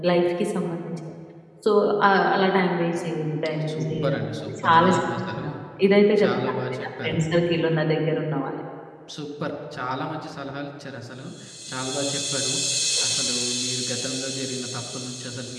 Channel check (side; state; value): both; identical; correlation 1.00